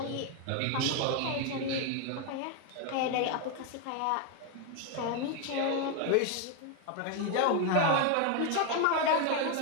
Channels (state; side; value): different; both; correlation 0.01